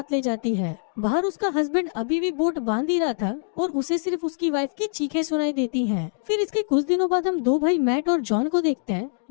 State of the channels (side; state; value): right; silent; digital silence